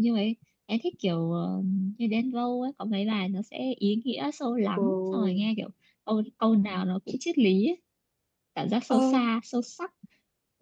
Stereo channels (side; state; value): both; identical; correlation 1.00